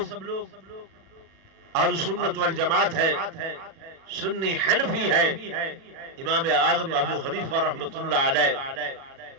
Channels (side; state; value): left; late; 37 ms